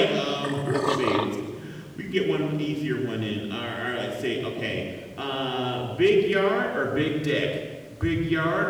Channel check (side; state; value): both; identical; correlation 1.00